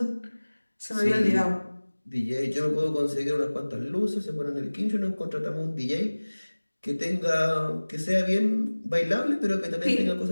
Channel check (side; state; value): both; inverted; correlation -1.00